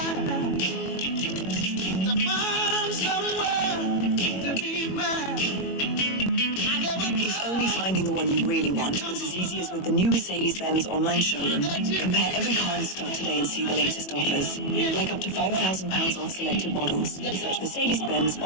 to find somewhere to be mine. If only finding the one you really want was as easy as with the new Mercedes-Benz online showroom. Compare every car in stock today and see the latest offers, like up to £5,000 off selected models. Search Mercedes-Benz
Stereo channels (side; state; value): right; late; 21 ms